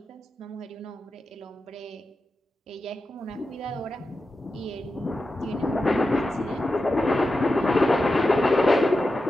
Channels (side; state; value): both; normal; correlation 0.91